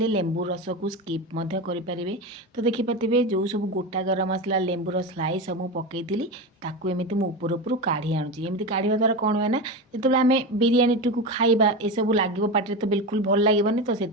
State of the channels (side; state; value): both; normal; correlation 0.21